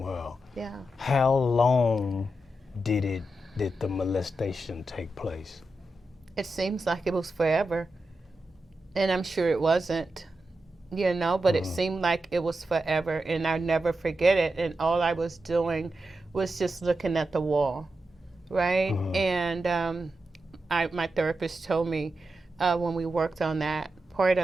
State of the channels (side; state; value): both; normal; correlation 0.89